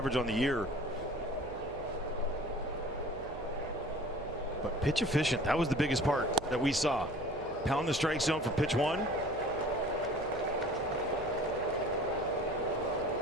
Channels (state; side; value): noise; right; hum, 15 dB below the sound